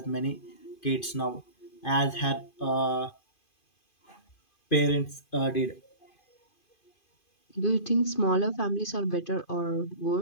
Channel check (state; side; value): late; right; 2.5 ms